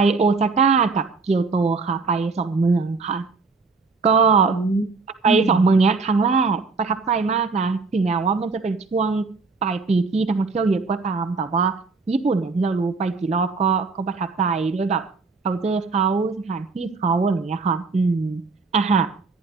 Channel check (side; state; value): left; quieter; 4.3 dB